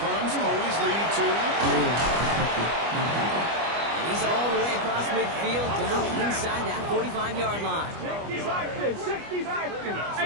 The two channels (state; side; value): late; left; 25 ms